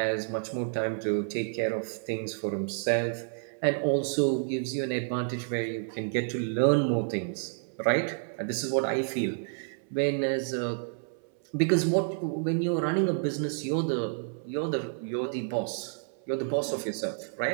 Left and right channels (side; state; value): left; silent; 58 dB below the other